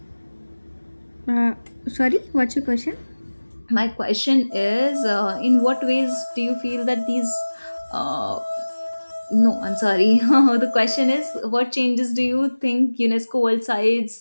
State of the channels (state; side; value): inverted; both; correlation -1.00